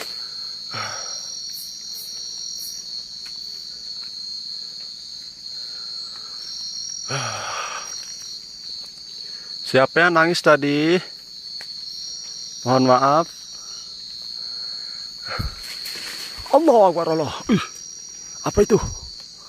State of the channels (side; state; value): both; identical; correlation 1.00